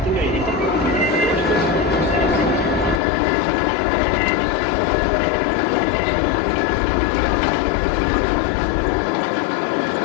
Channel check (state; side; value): drops out; right; at 3.0 s